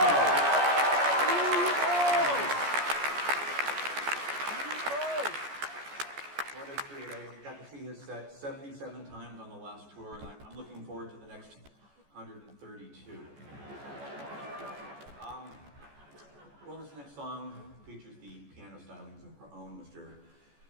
What a treat. I got to see his set 77 times on the last tour, and I'm looking forward to the next 132. Well, this next song features the piano stylings of our own Mr.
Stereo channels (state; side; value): late; left; 14 ms